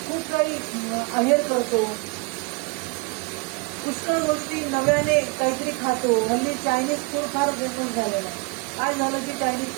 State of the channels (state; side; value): quieter; left; 30.4 dB